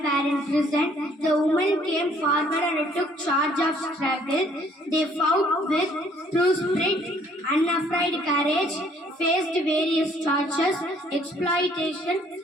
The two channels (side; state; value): both; normal; correlation 0.62